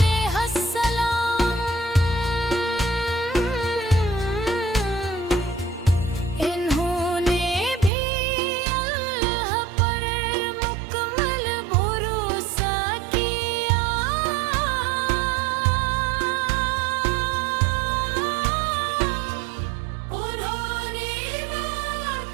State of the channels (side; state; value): left; drops out; at 7.9 s